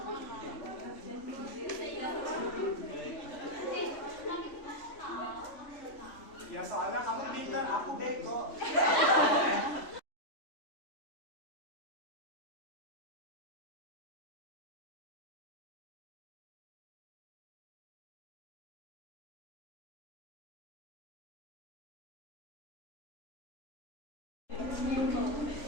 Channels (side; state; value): right; late; 3.5 ms